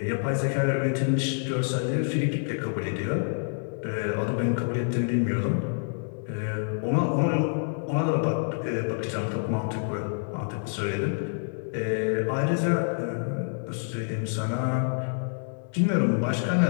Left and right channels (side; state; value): right; silent; digital silence